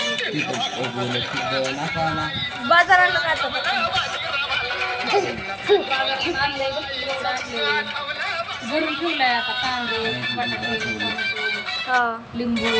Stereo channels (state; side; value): identical; both; correlation 1.00